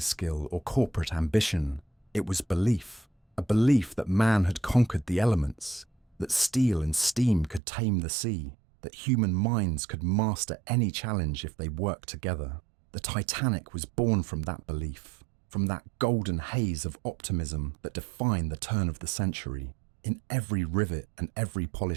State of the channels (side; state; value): left; drops out; at 7.6 s